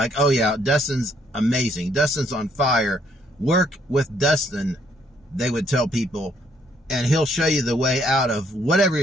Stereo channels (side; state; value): both; normal; correlation 0.69